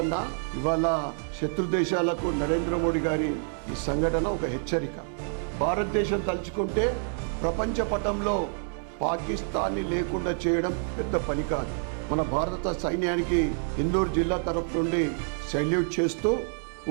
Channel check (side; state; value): left; silent; 60 dB below the other